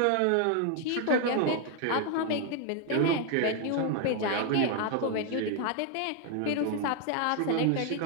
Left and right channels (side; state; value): both; different; correlation 0.00